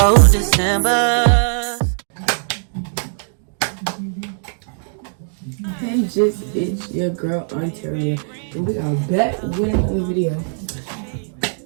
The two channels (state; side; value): silent; left; digital silence